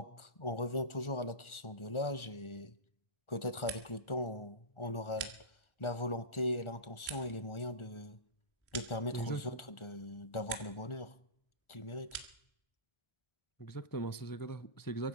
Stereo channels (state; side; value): late; right; 1.4 ms